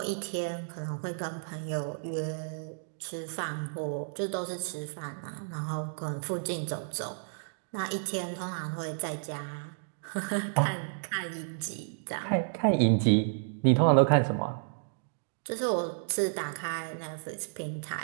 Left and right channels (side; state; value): left; silent; digital silence